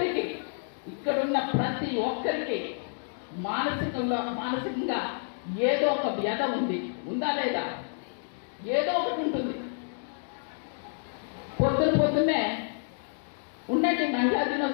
ఇక్కడున్న ప్రతి ఒక్కరికి మానసికంగా ఏదో ఒక వ్యధ ఉంది. ఉందా లేదా? ఏదో ఒకటి ఉంటుంది. పొద్దున్నే ఉండండి మహిళా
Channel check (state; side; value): silent; right; digital silence